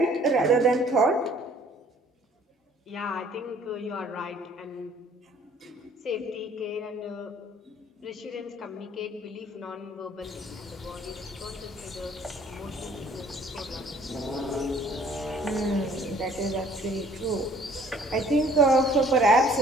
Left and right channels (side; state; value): both; normal; correlation 0.57